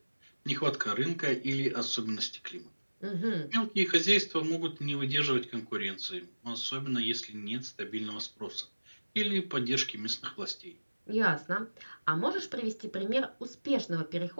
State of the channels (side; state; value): both; inverted; correlation -1.00